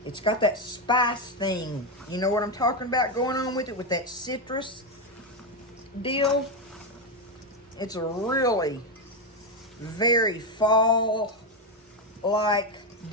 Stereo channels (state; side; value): normal; both; correlation 0.08